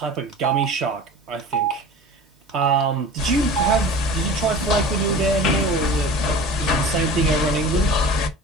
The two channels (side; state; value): both; normal; correlation 0.38